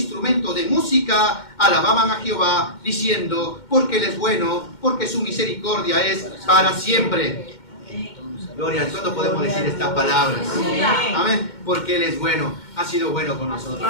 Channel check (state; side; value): late; right; 2.1 ms